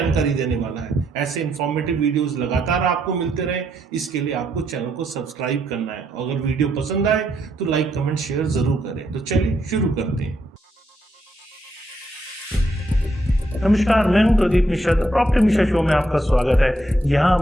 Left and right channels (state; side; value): normal; both; correlation 0.77